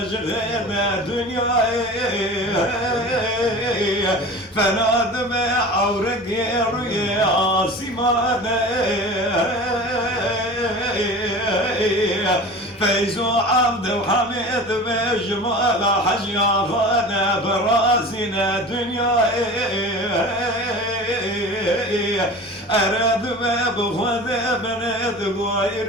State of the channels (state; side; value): normal; both; correlation 0.36